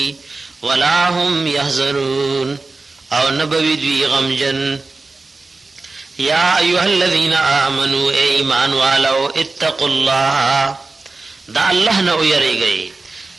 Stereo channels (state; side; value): quieter; left; 3.6 dB